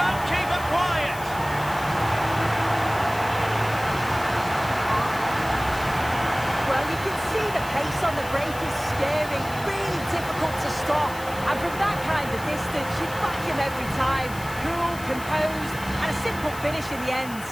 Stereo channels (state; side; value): noise; left; hiss, 15 dB below the sound